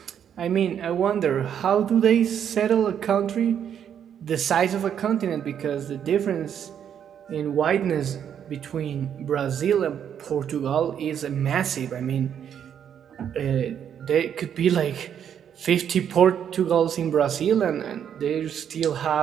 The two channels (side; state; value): left; quieter; 8.8 dB